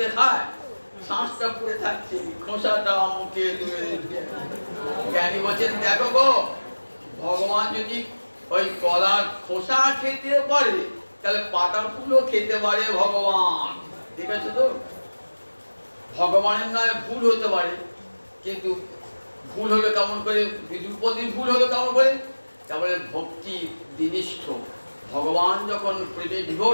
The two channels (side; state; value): both; inverted; correlation -1.00